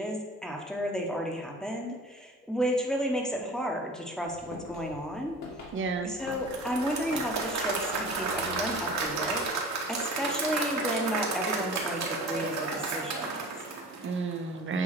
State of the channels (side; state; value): both; normal; correlation 0.42